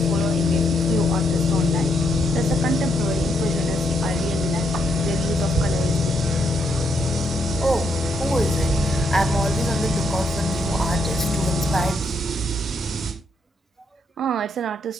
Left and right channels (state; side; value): normal; both; correlation 0.76